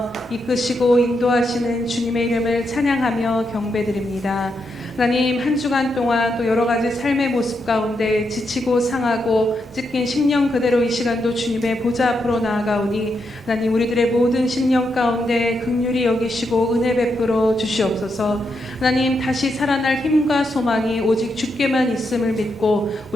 이끄시고 인도하시는 주님의 이름을 찬양하며 경배드립니다. 하나님, 한 주간 동안 또 여러 가지 삶의 모습 가운데 지치고 상하고 찢긴 심령 그대로 이 시간도 주님의 보좌 앞으로 나아가오니 하나님, 우리들의 모든 심령 가운데 긍휼히 여기시고 은혜 베풀어 주시옵소서. 하나님, 다시 살아날 힘과 소망이 오직 주께만 있음을 믿고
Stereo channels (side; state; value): both; normal; correlation 0.82